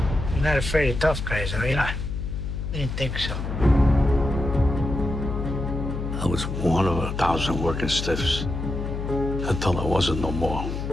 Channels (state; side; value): noise; left; hum, 4 dB below the sound